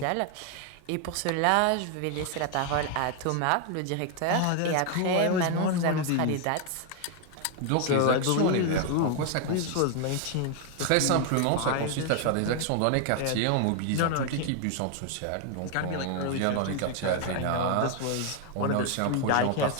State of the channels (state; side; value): different; both; correlation 0.00